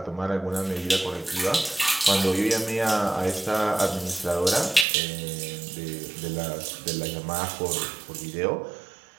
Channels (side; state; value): left; drops out; at 4.9 s